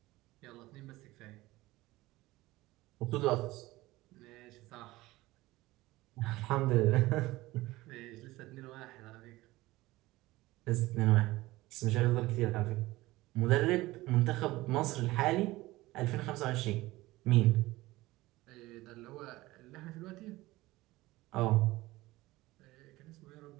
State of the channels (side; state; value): left; quieter; 18.8 dB